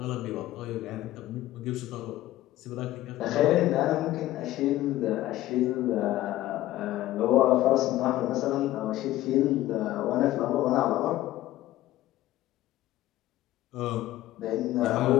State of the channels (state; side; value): quieter; right; 15.3 dB